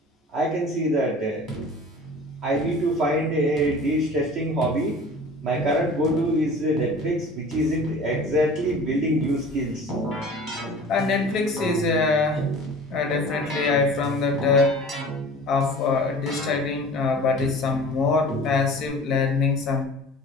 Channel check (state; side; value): normal; both; correlation 0.42